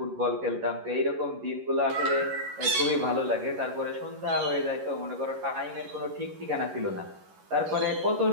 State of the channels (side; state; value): left; late; 11 ms